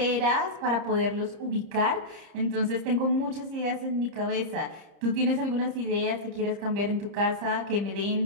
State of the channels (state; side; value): late; left; 30 ms